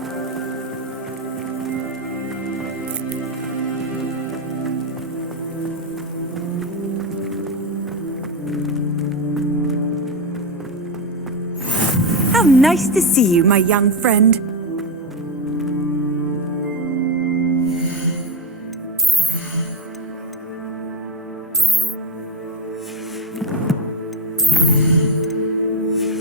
How nice to see you, my young friend.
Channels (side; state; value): both; normal; correlation 0.11